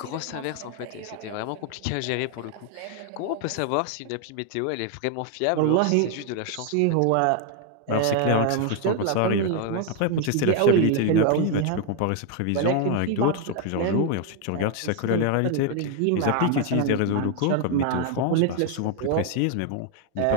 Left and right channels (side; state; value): both; different; correlation 0.00